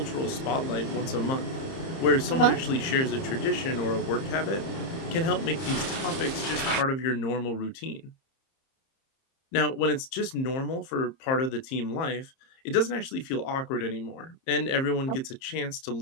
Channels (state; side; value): late; right; 30 ms